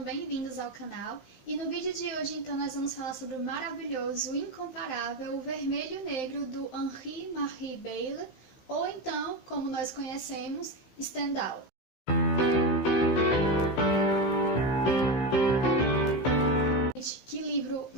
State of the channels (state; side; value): late; right; 15 ms